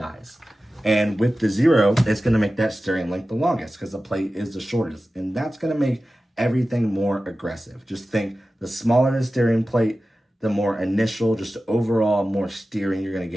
And with the zero, it's going to make that steering link the longest because the plate is the shortest. And that's going to make everything more aggressive. Just think, the smaller the steering plate, the more initial, just overall more steering you're going to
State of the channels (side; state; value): both; normal; correlation 0.95